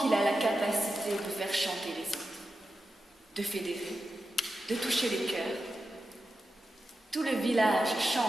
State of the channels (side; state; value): both; normal; correlation 0.90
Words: a la capacité de faire chanter les autres, de fédérer, de toucher les cœurs. Tout le village